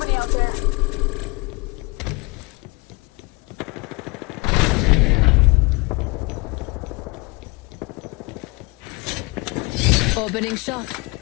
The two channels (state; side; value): quieter; right; 26.9 dB